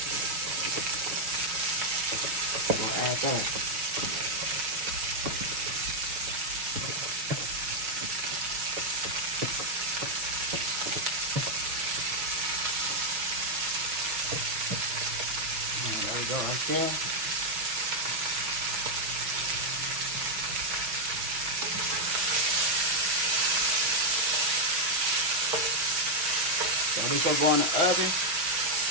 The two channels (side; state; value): left; late; 6.1 ms